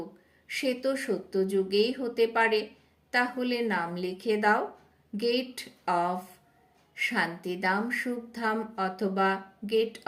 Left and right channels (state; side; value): identical; both; correlation 1.00